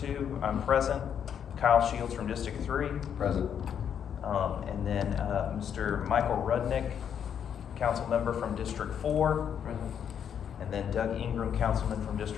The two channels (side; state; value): right; quieter; 8.4 dB